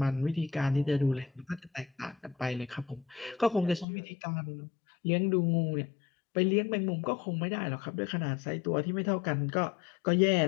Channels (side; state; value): right; drops out; at 3.9 s